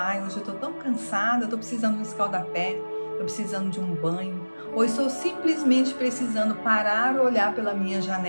ai, hoje eu tô tão cansada, tô precisando de um escaldapé, tô precisando de um banho, ou estou simplesmente precisando parar, olhar pela minha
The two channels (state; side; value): inverted; both; correlation -1.00